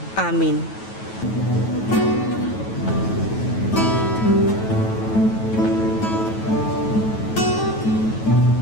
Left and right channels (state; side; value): late; right; 9.2 ms